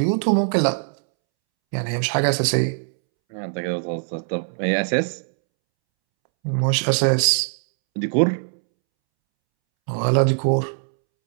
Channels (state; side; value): silent; left; 64 dB below the other